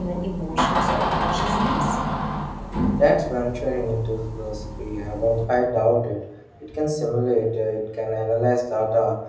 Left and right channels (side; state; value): both; identical; correlation 1.00